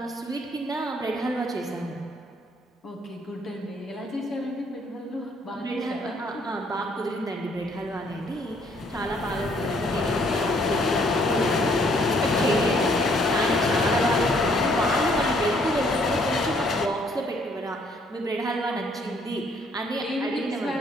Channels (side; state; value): both; normal; correlation 0.65